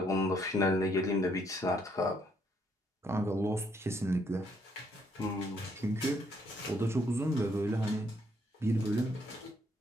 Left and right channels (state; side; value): normal; both; correlation 0.71